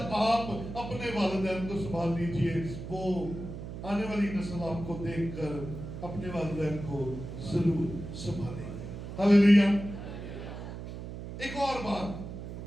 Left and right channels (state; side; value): noise; right; hum, 9 dB below the sound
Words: آپ اپنے والدین کو سنبھال لیجئے. وہ آنے والی نسل آپ کو دیکھ کر اپنے والدین کو ضرور سنبھالیں گے. ہاللیلویا. ایک اور